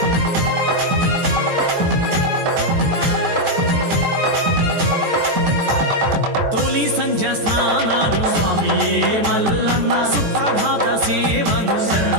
సంధ్య స్నానాలు స్వామియే మల్లన్న సుప్రభాత సేవలు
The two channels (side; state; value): left; late; 14 ms